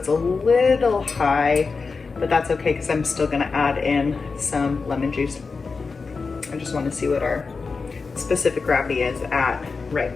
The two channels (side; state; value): right; quieter; 4.6 dB